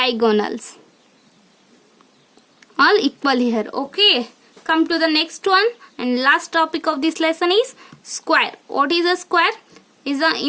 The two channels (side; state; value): both; identical; correlation 1.00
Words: all equal here. Okay, come to the next one and last topic of this lesson is square. What is a square?